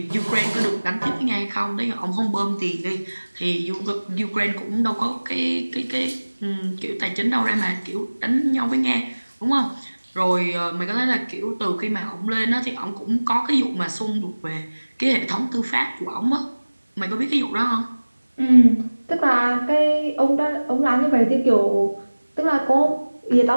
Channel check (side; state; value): both; inverted; correlation -1.00